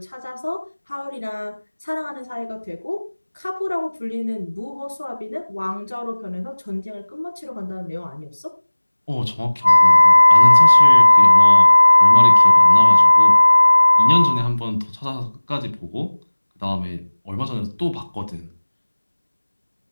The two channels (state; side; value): inverted; both; correlation -1.00